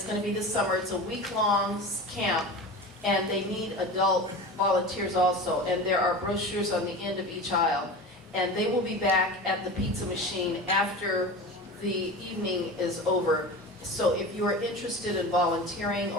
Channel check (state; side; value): normal; both; correlation 0.32